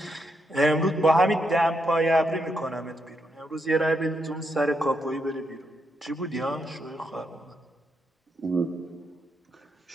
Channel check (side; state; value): both; normal; correlation 0.80